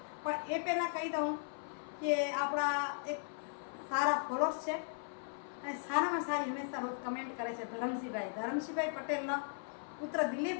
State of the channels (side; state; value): right; silent; 53 dB below the other